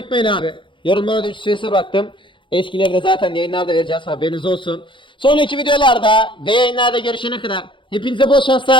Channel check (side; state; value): right; late; 0.24 ms